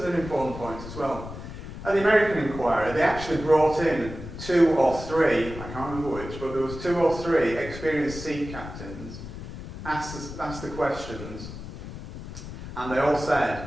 an important point as well. At the American inquiry, they actually brought in 2 or 3, I can't remember which, but there was 2 or 3 experienced sea captains asked the questions, and they all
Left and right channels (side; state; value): left; noise; rumble, 11 dB below the sound